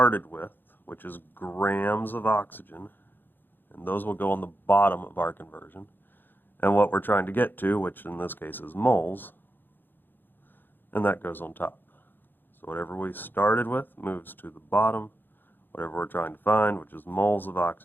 with, which is grams of oxygen, and those will go on the bottom of our conversion. And what we're trying to get to, which in this case is moles, and that goes on top. So whatever we started with moves to the bottom. Whatever we're trying to find, which is moles of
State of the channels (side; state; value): right; late; 0.095 ms